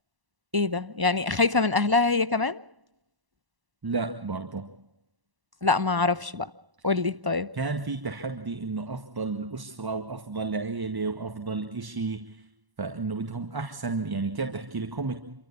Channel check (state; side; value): late; left; 1.1 ms